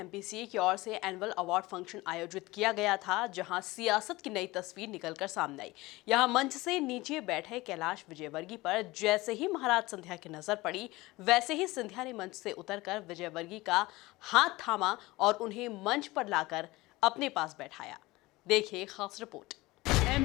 की ओर से एनुअल अवार्ड फंक्शन आयोजित किया गया था, जहां सियासत की नई तस्वीर निकलकर सामने आई। यहां मंच से नीचे बैठे कैलाश विजयवर्गीय पर जैसे ही महाराज सिंधिया की नजर पड़ी, वैसे ही सिंधिया ने मंच से उतरकर विजयवर्गीय का हाथ थामा और उन्हें मंच पर लाकर अपने पास बैठाया। देखिए खास रिपोर्ट।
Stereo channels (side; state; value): right; quieter; 20.4 dB